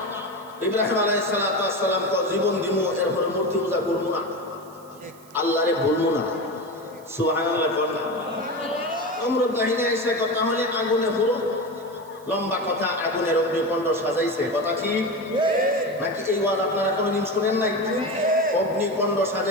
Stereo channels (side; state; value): right; noise; hiss, 26 dB below the sound